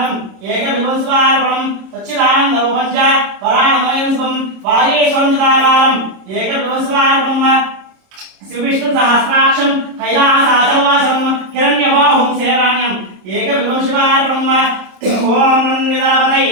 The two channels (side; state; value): left; late; 26 ms